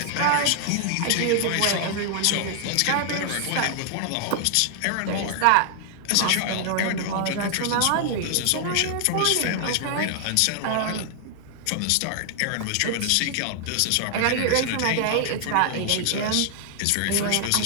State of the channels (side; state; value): both; different; correlation 0.00